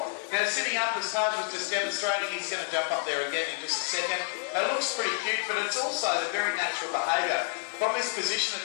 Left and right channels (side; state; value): right; silent; digital silence